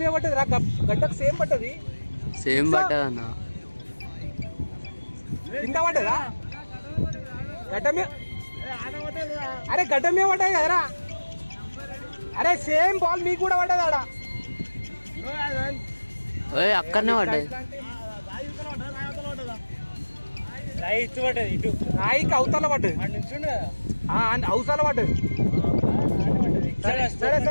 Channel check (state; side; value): inverted; both; correlation -1.00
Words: మీద పడ్డది రా. గడ్డకు సేమ్ పడ్డది. సేమ్ పడ్డది అన్న. కింద పడ్డదా గడ్డ మీద? అరే గడ్డ మీద పడ్డది కదరా. అరే సేమ్ బాల్ మీకు కూడా పడ్డది ఆడ. అక్కడనే పడ్డది. రాయికి అవతల పడ్డది, అవతల పడ్డది. సరే